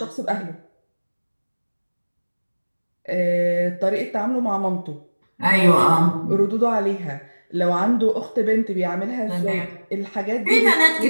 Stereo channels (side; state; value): both; inverted; correlation -1.00